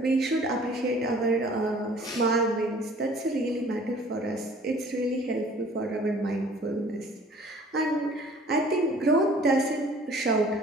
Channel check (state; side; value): normal; both; correlation 0.51